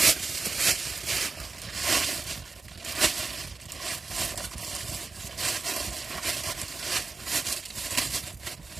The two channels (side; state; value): left; quieter; 4.1 dB